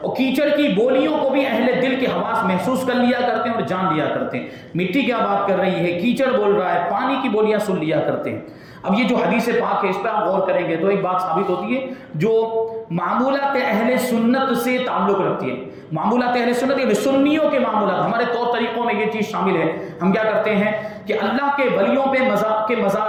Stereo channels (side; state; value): both; identical; correlation 1.00